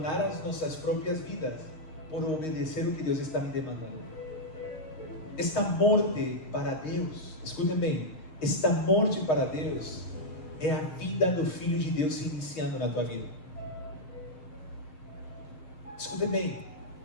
as nossas próprias vidas por obedecer o que Deus está me demandando. Esta morte para Deus, escutem bem, esta morte para Deus é a vida do Filho de Deus se iniciando na tua vida. Escutem bem,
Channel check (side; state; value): right; late; 6.4 ms